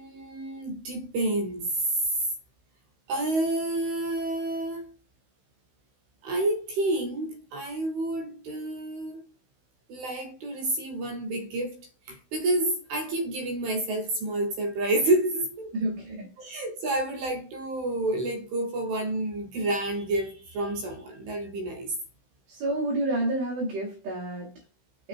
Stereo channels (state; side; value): late; left; 16 ms